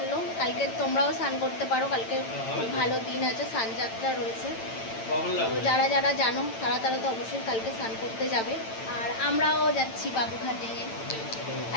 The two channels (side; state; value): right; late; 9.0 ms